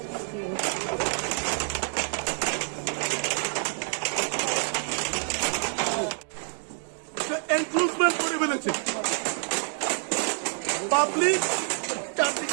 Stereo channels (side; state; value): left; silent; 57 dB below the other